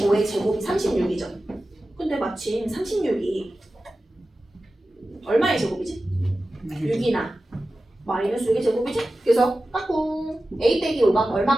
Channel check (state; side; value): normal; both; correlation 0.94